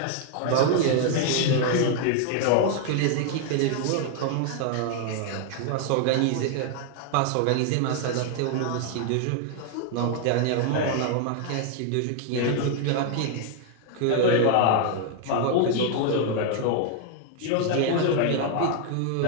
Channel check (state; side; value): different; both; correlation 0.00